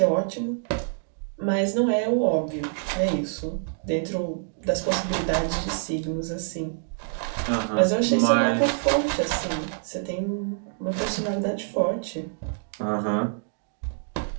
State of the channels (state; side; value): silent; left; digital silence